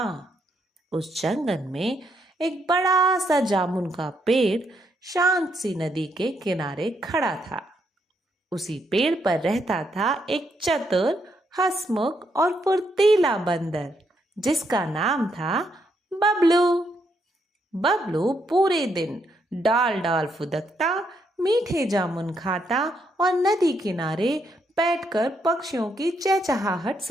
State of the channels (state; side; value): normal; both; correlation 0.76